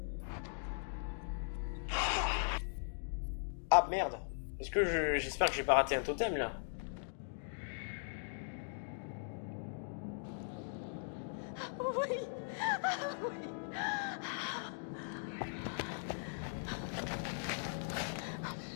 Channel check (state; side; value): silent; right; digital silence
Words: Ah merde. Est-ce que j'espère que j'ai pas raté un totem là? Oui. Ah, oui. Oh,